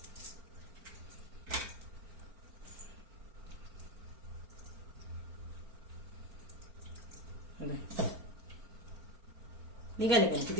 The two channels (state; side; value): late; left; 4.4 ms